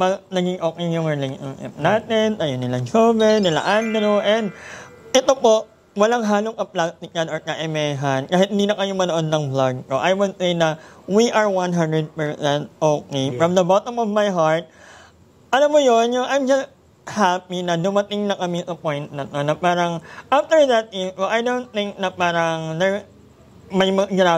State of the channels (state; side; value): identical; both; correlation 1.00